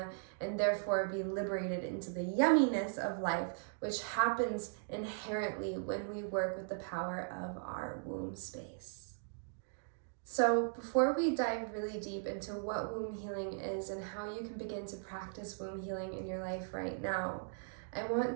and therefore be liberated into the yumminess of life, which happens inherently when we work with the power of our womb space. So before we dive really deep into what womb healing is and how you can begin to practice womb healing in your life right now, I want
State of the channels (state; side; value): silent; left; digital silence